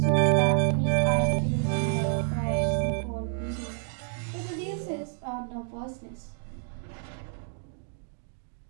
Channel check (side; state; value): left; silent; digital silence